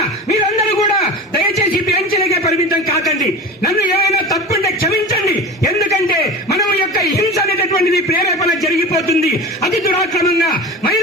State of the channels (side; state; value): both; normal; correlation 0.31